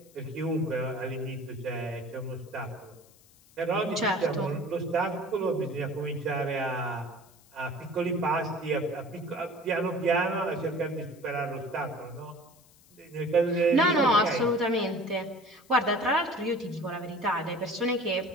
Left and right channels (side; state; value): left; noise; hiss, 27 dB below the sound